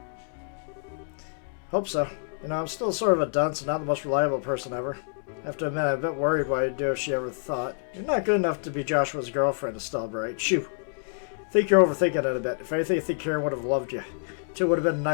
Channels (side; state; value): right; silent; digital silence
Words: Hope so. You know, I'm still sort of a dunce and not the most reliable person ever. I have to admit, I'm a bit worried what I'd do if she ever thought. You're not good enough to be Joshua's girlfriend, Estelle Bright. Shoo. I think you're overthinking it a bit. If anything, I think Karen would have loved you. Two would have been a